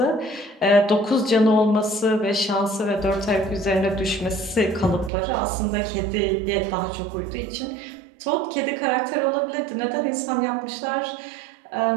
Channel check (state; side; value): drops out; left; at 5.1 s